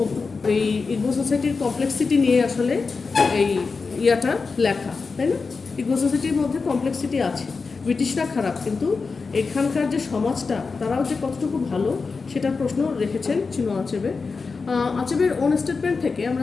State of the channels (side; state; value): right; quieter; 4.6 dB